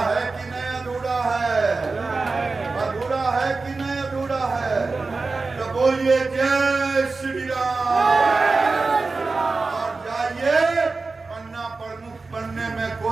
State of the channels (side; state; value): left; quieter; 3.9 dB